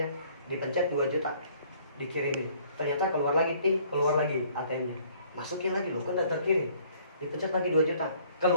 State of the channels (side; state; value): both; inverted; correlation -0.59